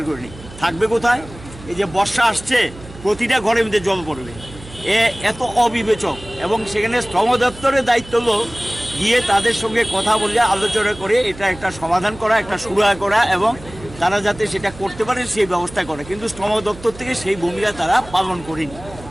করেনি। থাকবে কোথায়? এই যে বর্ষা আসছে প্রতিটা ঘরের মধ্যে জল পড়বে, এত অবিবেচক। এবং সেখানে শ্রম দপ্তরের দায়িত্ব হলো গিয়ে তাদের সঙ্গে কথা বলে আলোচনা করে এটা একটা সমাধান করা, একটা সুরাহা করা এবং তারা যাতে সেটা করতে পারে সেই ব্যবস্থা করে। কিন্তু শ্রম দপ্তর থেকে সেই ভূমিকা তারা পালন করেনি।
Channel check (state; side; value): noise; right; hum, 17 dB below the sound